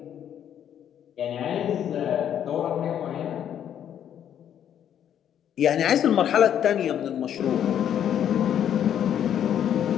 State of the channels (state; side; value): quieter; right; 9.7 dB